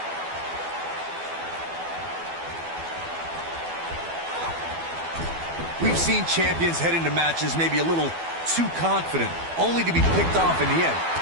We've seen champions head into matches maybe a little too confident, only to be picked off in the end.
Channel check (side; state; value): left; late; 12 ms